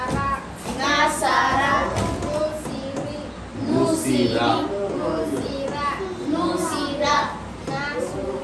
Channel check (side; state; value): both; identical; correlation 1.00